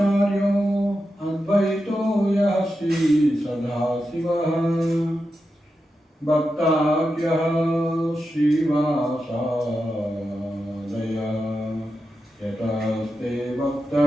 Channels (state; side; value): normal; both; correlation 0.89